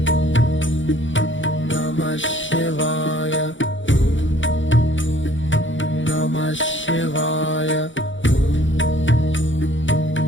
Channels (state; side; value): late; right; 0.55 ms